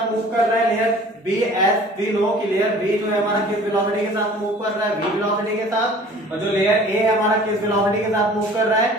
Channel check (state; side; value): normal; both; correlation 0.48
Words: मूव कर रहा है, layer B as we know कि लेयर बी जो है हमारा किस वेलोसिटी के साथ मूव कर रहा है, v वेलोसिटी के साथ, और जो लेयर ए हमारा किस वेलोसिटी के साथ मूव कर रहा है,